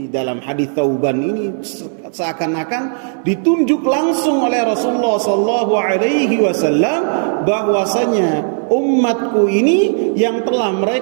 dalam hadis Thauban ini seakan-akan ditunjuk langsung oleh Rasulullah sallallahu alaihi wasallam bahwasanya umatku ini yang telah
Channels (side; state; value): left; silent; digital silence